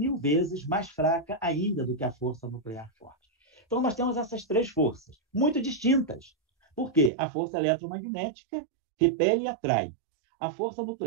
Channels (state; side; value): drops out; left; at 7.1 s